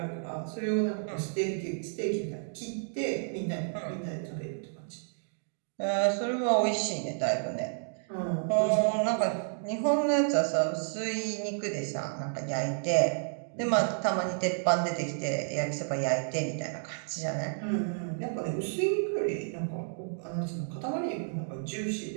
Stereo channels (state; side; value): silent; left; digital silence